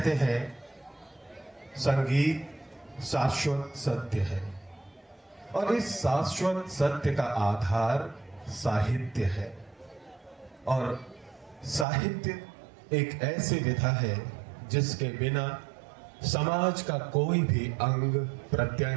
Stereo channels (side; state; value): left; drops out; at 11.9 s